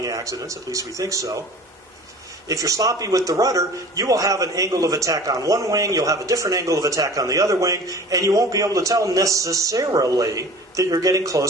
accidents, at least we think so. If you're sloppy with the rudder, you will have an angle of attack on one wing, you'll have a different angle of attack on the other wing, and you won't be able to tell necessarily that you're getting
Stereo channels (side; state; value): both; normal; correlation 0.43